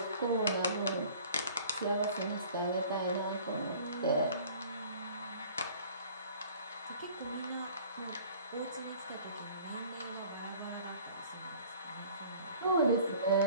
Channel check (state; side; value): inverted; both; correlation -0.49